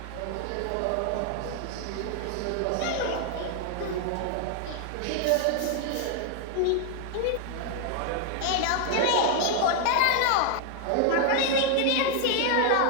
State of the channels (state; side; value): different; both; correlation 0.00